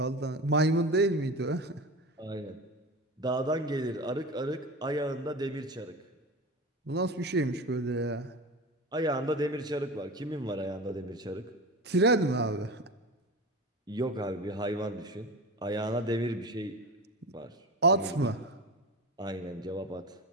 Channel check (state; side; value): normal; both; correlation 0.29